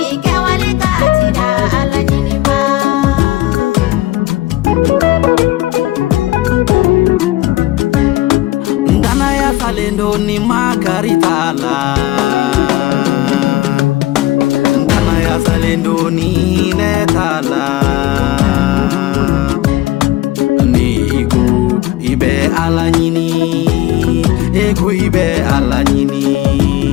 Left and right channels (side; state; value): right; quieter; 16.8 dB